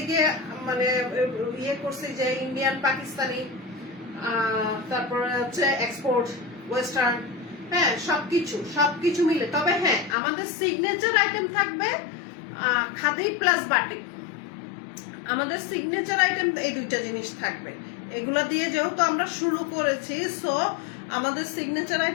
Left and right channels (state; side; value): drops out; right; at 10.2 s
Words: মানে ইয়ে করছি, যে ইন্ডিয়ান, পাকিস্তানি, তারপরে হচ্ছে এক্সপোর্ট, ওয়েস্টার্ন, হ্যাঁ সবকিছু মিলে। তবে হ্যাঁ, আমাদের সিগনেচার আইটেম থাকবে খাদি প্লাস বাটিক। আমাদের সিগনেচার আইটেম এই দুইটা জিনিস থাকবে। এগুলা দিয়ে যেহেতু আমরা শুরু করেছি, সো আমাদের সিগনেচার